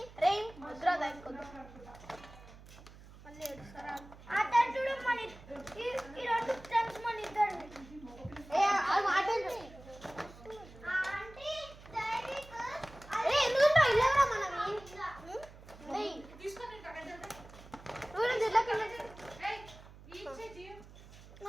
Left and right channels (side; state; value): right; noise; hum, 19 dB below the sound